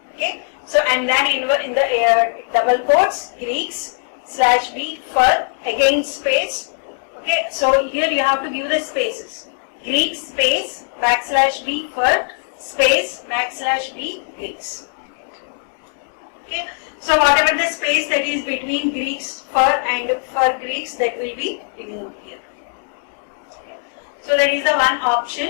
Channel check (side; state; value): right; silent; 66 dB below the other